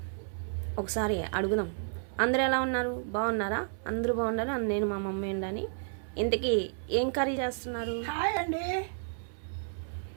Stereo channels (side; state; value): left; silent; 57 dB below the other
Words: ఒకసారి అడుగుదాం. అందరూ ఎలా ఉన్నారు? బాగున్నారా? అందరూ బాగున్నారు. నేను మా మమ్మీ ఉండని. ఇంతకీ ఏం కర్రీ చేస్తున్నారు? హాయ్ అండి.